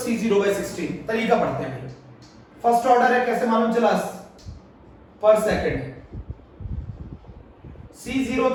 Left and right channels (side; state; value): both; identical; correlation 1.00